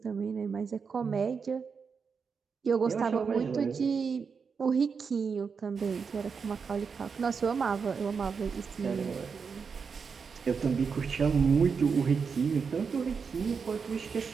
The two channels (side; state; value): left; quieter; 5.7 dB